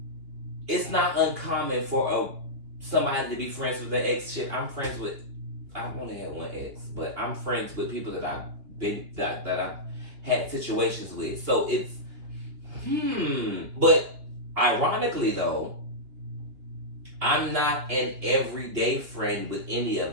it's not uncommon for somebody to be friends with their ex. Shit, I've only had one ex, but I'm friends with people that I've had situations with. So it's, but ironically though, I'm not an everyday friend with any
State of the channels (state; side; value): late; left; 2.9 ms